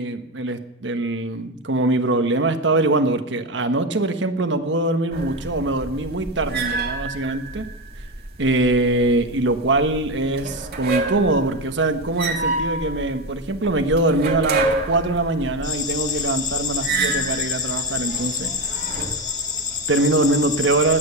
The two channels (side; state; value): both; normal; correlation 0.15